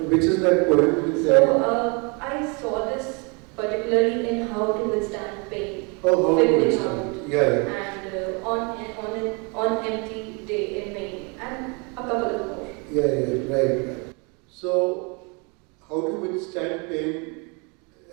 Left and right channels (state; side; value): quieter; left; 32.2 dB